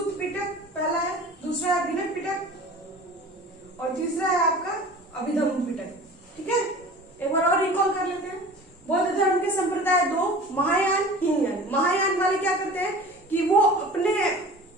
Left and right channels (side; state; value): both; normal; correlation 0.40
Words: पिटक पहला है, दूसरा है विनय पिटक और तीसरा है आपका अभिधम्म पिटक। ठीक है, एक बार और रिकॉल कर लेते हैं। बौद्ध धर्म के संप्रदाय 2, महायान, हीनयान। महायान वाले क्या करते हैं कि वो अपने